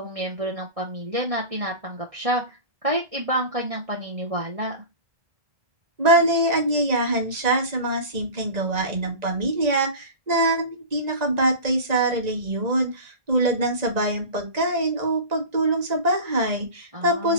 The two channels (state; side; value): late; left; 1.9 ms